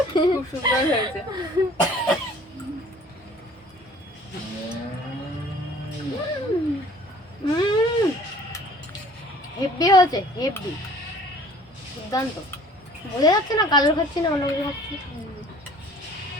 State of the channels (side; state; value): both; normal; correlation 0.51